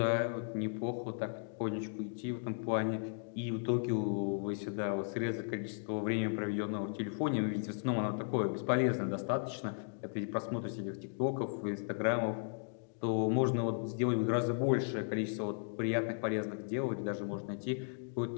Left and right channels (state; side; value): silent; right; digital silence